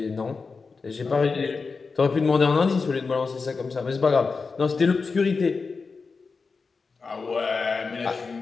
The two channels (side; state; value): right; quieter; 4.6 dB